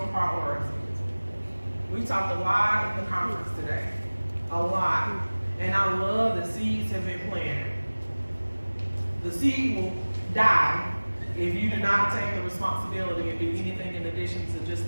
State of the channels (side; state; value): both; inverted; correlation -1.00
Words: priority. We talked a lot at the conference today. A lot. And I love the seeds have been planted. The seed will die if you do not take the responsibility and do anything in addition to